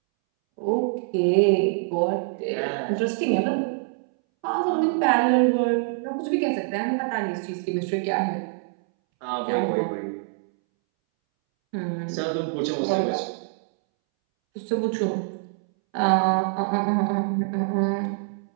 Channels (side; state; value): left; silent; 62 dB below the other